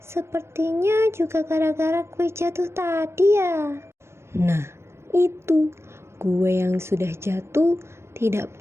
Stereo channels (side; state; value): left; late; 0.13 ms